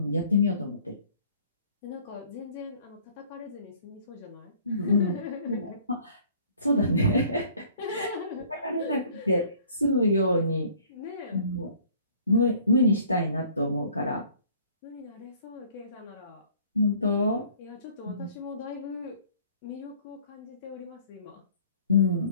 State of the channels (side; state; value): both; inverted; correlation -0.54